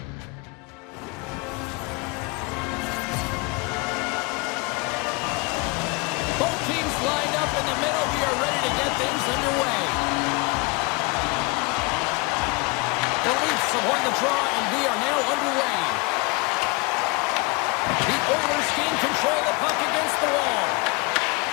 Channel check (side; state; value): right; quieter; 28.1 dB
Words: Both teams lined up in the middle. We are ready to get things underway. The Leafs have won the draw, and we are now underway. The Oilers gain control of the puck against the wall.